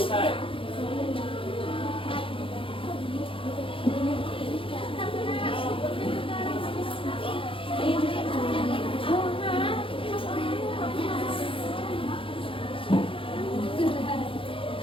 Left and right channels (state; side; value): late; right; 0.26 ms